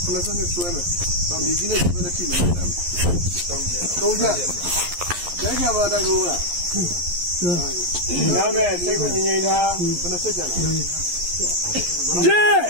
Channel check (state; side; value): late; left; 11 ms